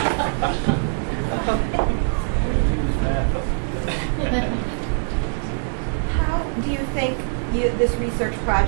How do you think this research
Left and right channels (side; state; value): left; silent; digital silence